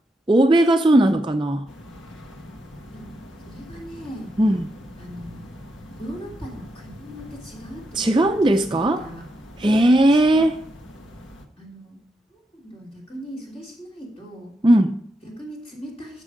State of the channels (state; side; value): normal; both; correlation 0.83